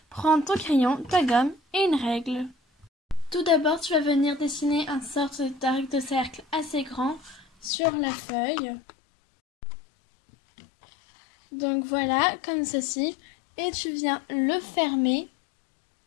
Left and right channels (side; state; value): right; drops out; at 7.7 s